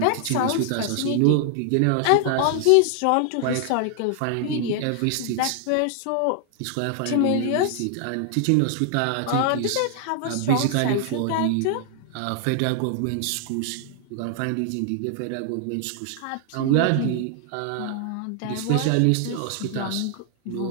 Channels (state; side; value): different; both; correlation 0.00